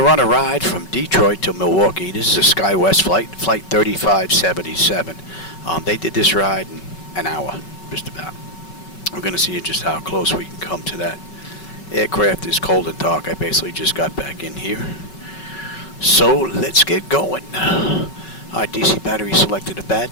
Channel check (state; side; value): late; right; 5.3 ms